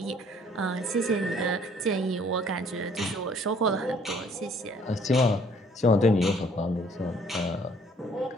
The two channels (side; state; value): both; normal; correlation 0.60